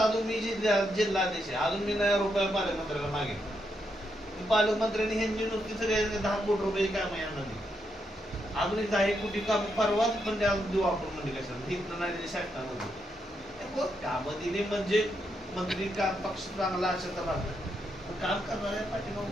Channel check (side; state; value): both; normal; correlation 0.81